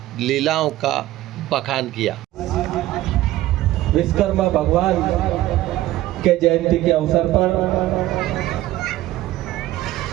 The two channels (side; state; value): left; quieter; 15.6 dB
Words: लीलाओं का बखान किया। विश्वकर्मा भगवान के जयंती के अवसर पर